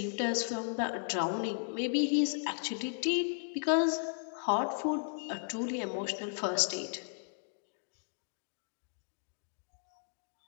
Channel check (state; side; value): silent; right; digital silence